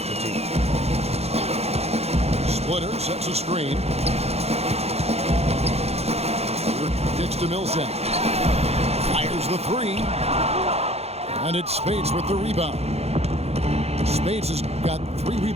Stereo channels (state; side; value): late; left; 0.30 ms